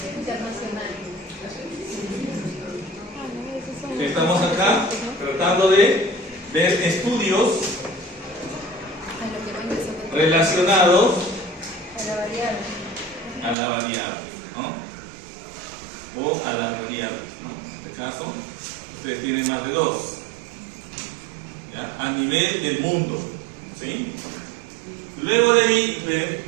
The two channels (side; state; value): left; drops out; at 13.6 s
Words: Estamos acá tratando de ver estudios relacionados a la variable, ¿no? O a la variable, ¿no? En este caso, ustedes tienen más de dos, ¿ya? A nivel del mundo, ¿sí? Luego de ahí